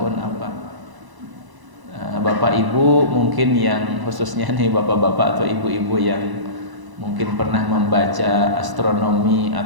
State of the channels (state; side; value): late; left; 1.0 ms